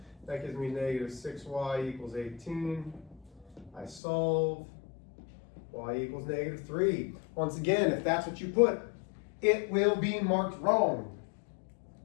That gives me negative 6y equals 18. I solve. Y equals negative 3. Once again, if that's what you put, it will be marked wrong.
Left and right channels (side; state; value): right; drops out; at 4.0 s